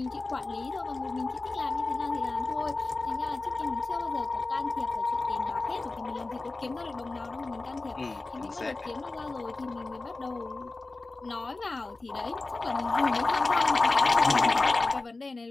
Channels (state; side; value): quieter; right; 3.4 dB